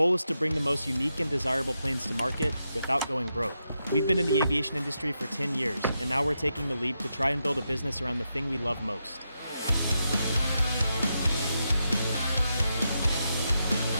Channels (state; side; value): inverted; both; correlation -0.85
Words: is to bring the most unique and desirable planes to market without going broke. We've been in the aviation industry for 10 years, and now we're taking the leap to try and build a business around the thing we love most.